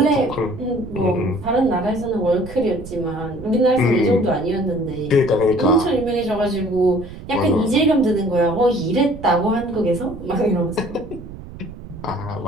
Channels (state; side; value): noise; right; rumble, 14 dB below the sound